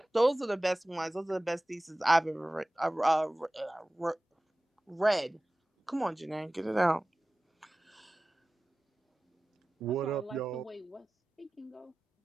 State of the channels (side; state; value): both; normal; correlation 0.97